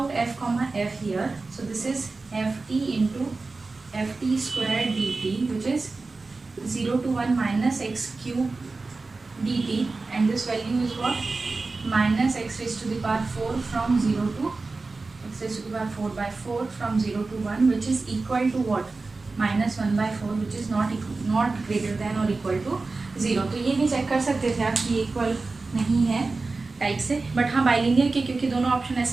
f comma f here, so this is f t into f t square d t which is 0 to 1 minus x cube dt, and this value is what, minus x raised to the power 4 from 0 to x raised to the power 4 by 4 from 0 to 1, which is equal to what, minus 1 by 4, which is not greater than or equal to 0। तो ये भी check कर सकते थे आप कि equal नहीं है टाइप से, बट हाँ बाइलिनियर के, क्योंकि दोनों ऑप्शन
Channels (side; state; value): left; quieter; 3.7 dB